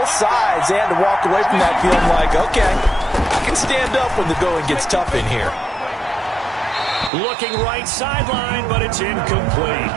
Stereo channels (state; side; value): drops out; left; at 7.1 s